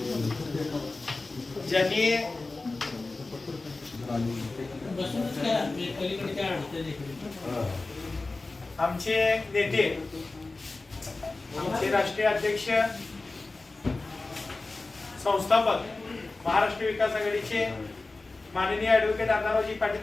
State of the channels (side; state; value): right; quieter; 3.4 dB